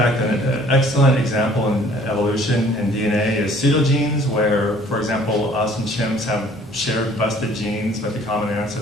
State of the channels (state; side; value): normal; both; correlation 0.55